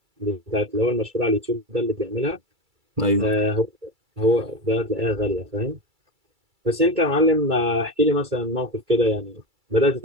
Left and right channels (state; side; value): late; left; 2.3 ms